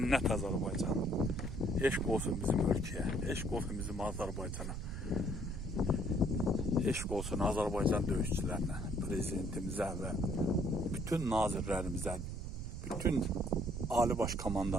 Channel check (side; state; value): right; noise; rumble, 6 dB below the sound